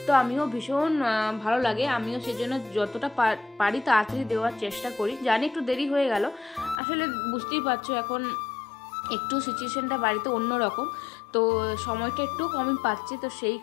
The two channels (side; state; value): right; drops out; at 6.8 s